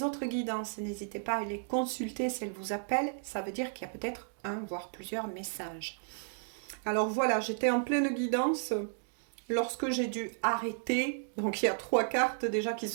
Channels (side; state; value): left; silent; digital silence